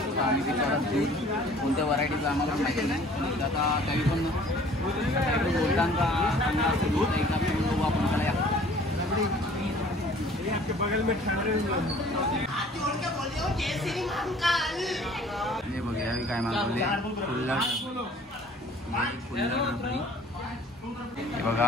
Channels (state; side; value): normal; both; correlation 0.52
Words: आम्ही विचारत दूध कोणत्या व्हरायटीचं आम्हाला माहिती नाही. आता काही पण बोलताना चांगला असं दूध एकदा पिऊन बघू आपण. त्याला हे बघा यावी काय मागवले. हे बघा